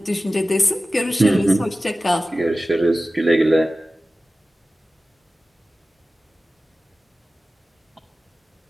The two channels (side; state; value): both; normal; correlation 0.96